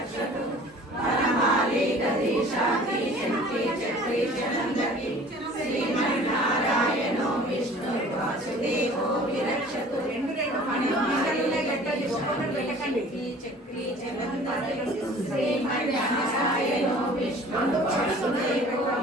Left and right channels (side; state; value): both; normal; correlation 0.48